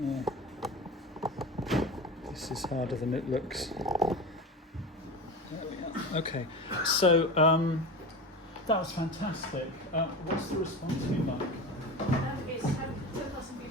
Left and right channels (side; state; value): both; normal; correlation 0.28